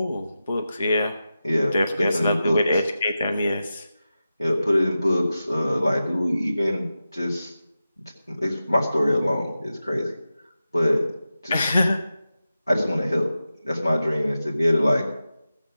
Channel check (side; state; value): both; inverted; correlation -0.92